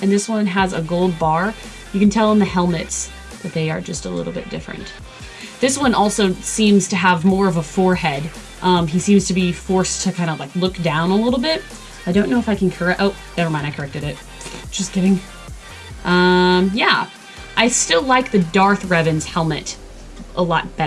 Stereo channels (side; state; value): both; identical; correlation 1.00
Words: and this one has a gold bar. You can tell in the helmets that they are just a little bit different. This one also seems to have more of a forehead. He seems to be forced to kind of like look down a little bit. I don't know if I can correct, oh, never mind, I corrected it. Just kidding. Yeah, I still like the Darth Revan's helmet a lot